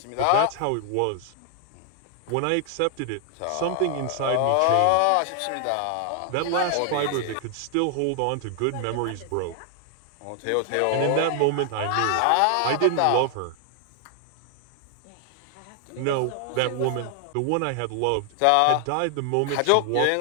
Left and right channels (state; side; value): different; both; correlation 0.00